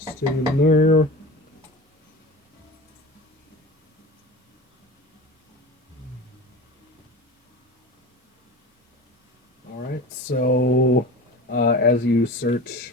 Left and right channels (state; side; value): normal; both; correlation 0.33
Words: in there? Alright, so as you search